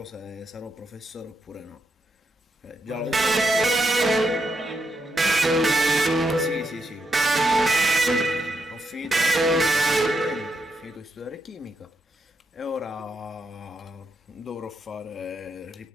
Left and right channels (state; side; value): normal; both; correlation 0.82